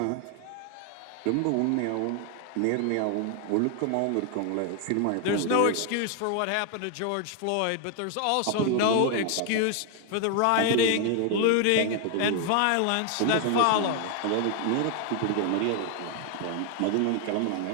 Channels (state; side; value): different; both; correlation 0.00